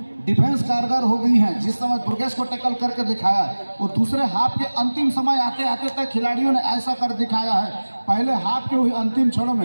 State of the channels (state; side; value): inverted; both; correlation -1.00